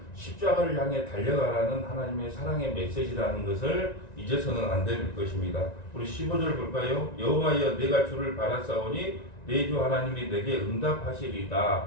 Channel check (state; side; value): late; right; 1.9 ms